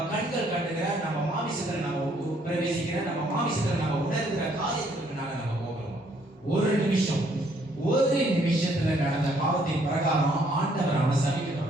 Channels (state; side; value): normal; both; correlation 0.66